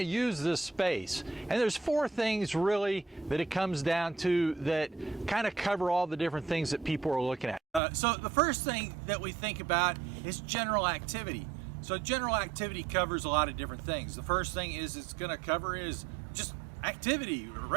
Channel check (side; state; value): left; drops out; at 7.8 s